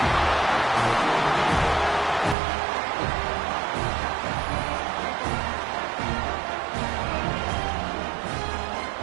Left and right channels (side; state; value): left; drops out; at 2.4 s